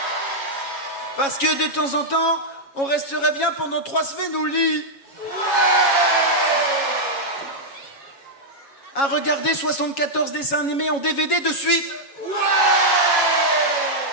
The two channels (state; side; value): late; right; 7.3 ms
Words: Parce que de temps en temps on resterait bien pendant 3 semaines au lit à regarder 74 dessins animés en DVD de suite.